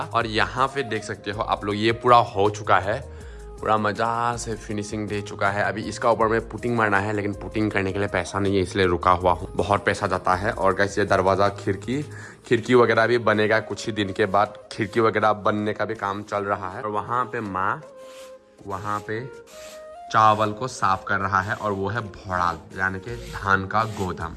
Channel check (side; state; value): both; identical; correlation 1.00